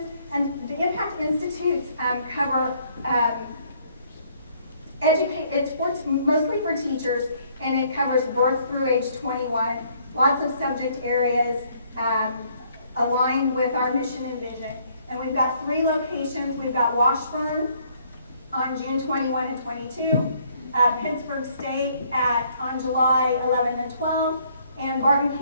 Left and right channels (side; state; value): both; inverted; correlation -0.65